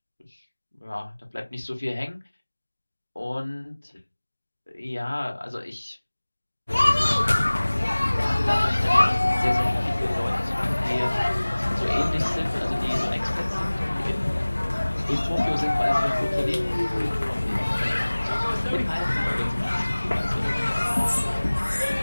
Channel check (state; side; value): inverted; both; correlation -1.00